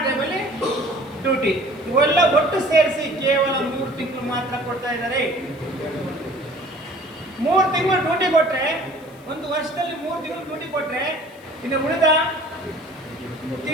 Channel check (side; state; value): left; noise; hiss, 28 dB below the sound